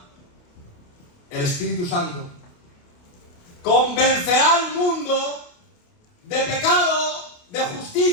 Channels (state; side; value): late; right; 28 ms